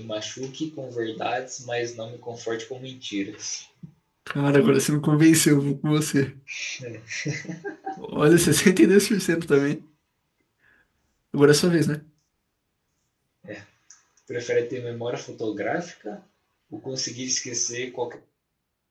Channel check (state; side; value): identical; both; correlation 1.00